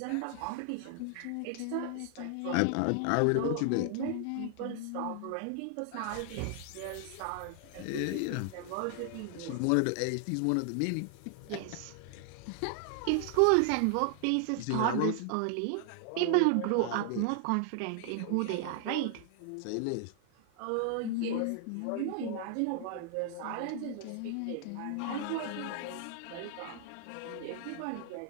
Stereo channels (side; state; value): both; different; correlation 0.00